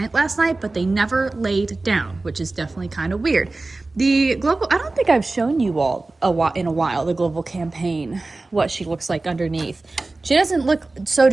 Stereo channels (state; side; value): quieter; left; 3.3 dB